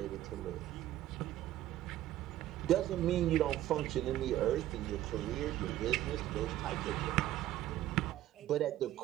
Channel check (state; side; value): quieter; left; 13.7 dB